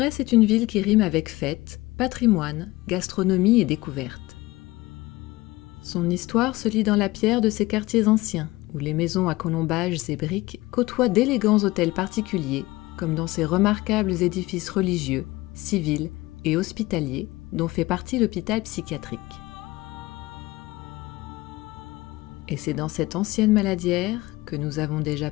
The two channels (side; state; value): right; quieter; 20.0 dB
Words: est une ville qui rime avec fête, patrimoine, gastronomie et découverte. Son histoire se lit dans la pierre de ses quartiers anciens, où les maisons à colombages et briques côtoient d'élégants hôtels particuliers, comme dans ces remarquables édifices religieux, civils et hospitaliers, dont fait partie l'hôpital psychiatrique. Et c'est dans cette ancienne maladière que nous avons déjà